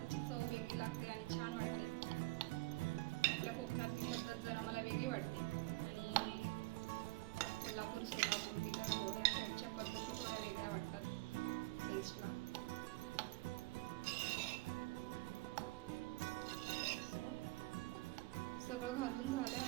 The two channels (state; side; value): quieter; left; 21.7 dB